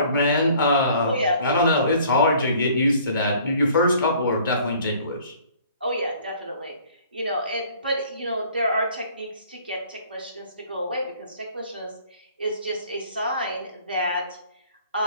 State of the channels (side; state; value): both; inverted; correlation -0.54